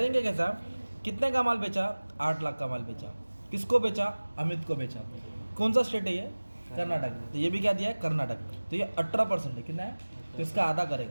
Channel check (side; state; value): both; inverted; correlation -1.00